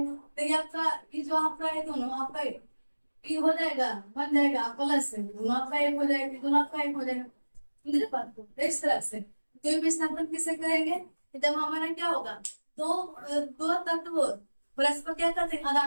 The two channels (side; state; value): both; inverted; correlation -1.00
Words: तो ये आपका ये जो आपका है दोनों आपका ये हो जाएगा, बन जाएगा प्लस से, दोनों आपका एक हो जाएगा, दोनों आपका एक हो जाएगा, मेरे बात को इस तरह से। तो विस्थापन किसे कहेंगे, जब हमारा क्या होगा, दो दो तत्व परस्पर क्या करते हैं,